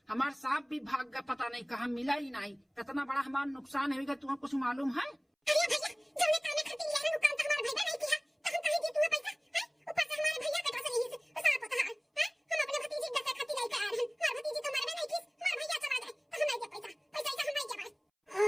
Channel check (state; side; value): identical; both; correlation 1.00